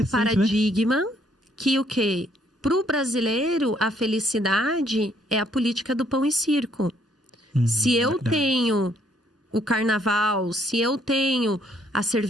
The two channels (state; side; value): normal; both; correlation 0.67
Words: paradigma, né? Que o quê? Pro brasileiro, a felicidade é a política do pão e circo. Se eu tenho o carnaval, se eu tenho a